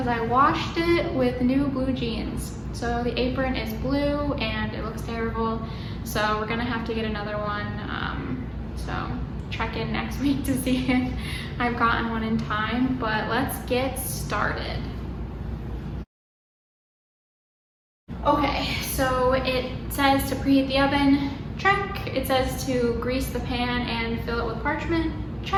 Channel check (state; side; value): identical; both; correlation 1.00